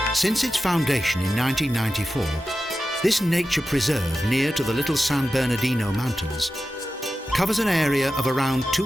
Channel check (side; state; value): both; normal; correlation 0.93